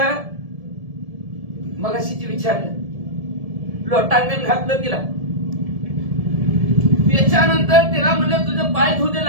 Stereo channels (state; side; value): late; left; 1.7 ms